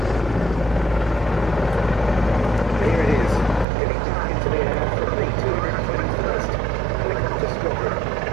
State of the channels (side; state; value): left; drops out; at 3.7 s